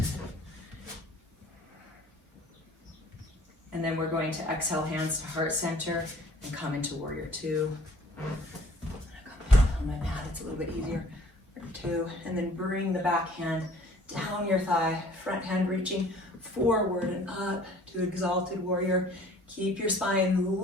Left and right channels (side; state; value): both; normal; correlation 0.53